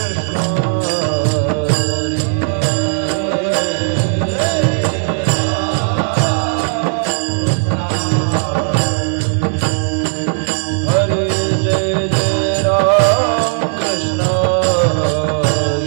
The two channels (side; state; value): left; silent; 69 dB below the other